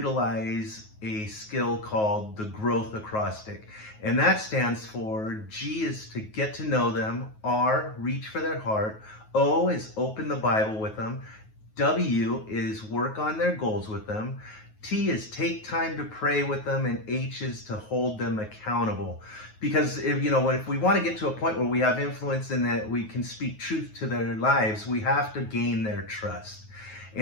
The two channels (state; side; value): late; right; 9.4 ms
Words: a skill called the growth acrostic. And that stands for G is to get to know them, R, reach for their heart, O is open the Bible with them, W is work on their goals with them, T is take time to pray with them, and H is to hold them accountable. Because if we want to get to a point where we have influence and that we can speak truth to their lives, we have to gain their trust.